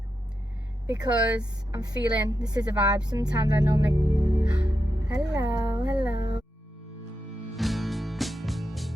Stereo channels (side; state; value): both; normal; correlation 0.87